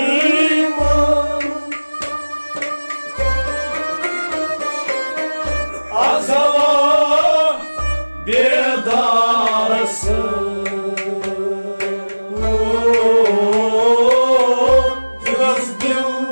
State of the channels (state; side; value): inverted; both; correlation -1.00